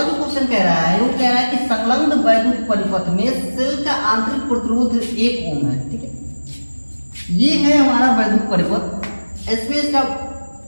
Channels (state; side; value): inverted; both; correlation -1.00